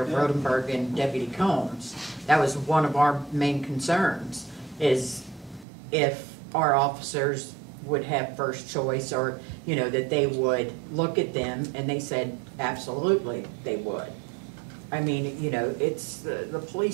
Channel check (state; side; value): drops out; left; at 5.7 s